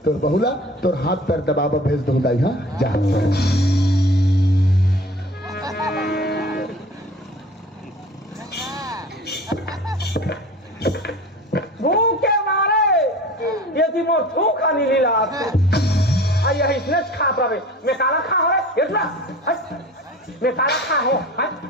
तोर बहुला तोर हाथ पैर दबावा भेज दो दाई। हाँ जा भूखे मारे ये थी मोर थू खानी लीला आई इसने खा पावे मैं काला खा हो रे इतना मैं काला खा हो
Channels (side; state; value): both; normal; correlation 0.41